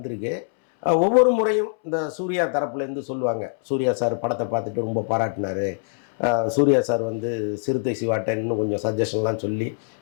ஒவ்வொரு முறையும் இந்த சூர்யா தரப்புலேருந்து சொல்லுவாங்க, சூர்யா சார் படத்தை பார்த்துட்டு ரொம்ப பாராட்டினார், சூர்யா சார் வந்து சிறுத்தை சிவாட்ட இன்னும் கொஞ்சம் சஜஷன்லாம் சொல்லி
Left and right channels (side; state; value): right; silent; 63 dB below the other